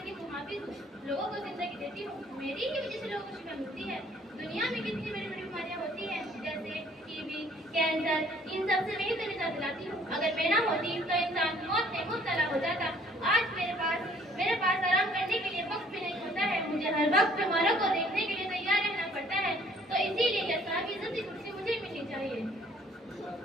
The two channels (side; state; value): both; normal; correlation 0.59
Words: को हाफिज हूँ, लोगों को जिंदगी देती हूँ। मेरी ही वजह से लोगों को शिफा मिलती है। दुनिया में कितनी बड़ी बड़ी बीमारियाँ होती हैं, जैसे टीबी, कैंसर, इन सब से मैं ही तो निजात दिलाती हूँ। अगर मैं ना होती तो इंसान मौत में मुब्तला हो जाता। आज मेरे पास आराम करने के लिए वक्त भी नहीं होता है। मुझे हर वक्त बीमारों को देखने के लिए तैयार रहना पड़ता है। तो इसीलिए यह साहब इज्जत की कुर्सी मुझे मिलनी चाहिए।